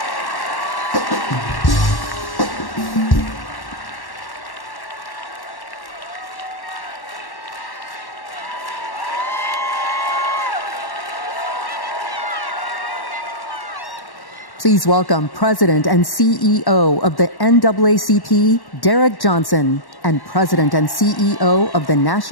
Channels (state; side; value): late; right; 1.1 ms